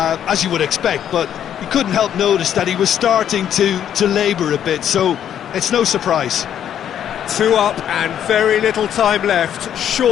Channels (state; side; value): quieter; right; 9.8 dB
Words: as you would expect, but you couldn't help notice that he was starting to labour a bit, so it's no surprise. 2 up and very little time left.